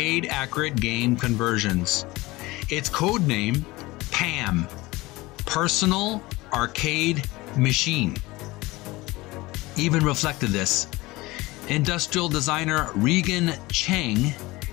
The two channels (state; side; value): quieter; right; 20.9 dB